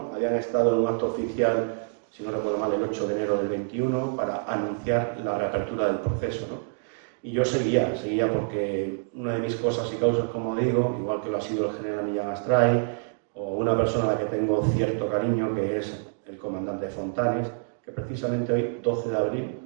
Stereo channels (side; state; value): left; silent; digital silence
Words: Habían estado en un acto oficial, si no recuerdo mal, el 8 de enero del 21, para anunciar la reapertura del proceso, ¿no? Y yo seguía porque una de mis cosas y causas, como digo, igual que lo ha sido el general Millán Astray, o una persona a la que tengo cierto cariño, que es el comandante Fontanes, que precisamente hoy, 12 de abril,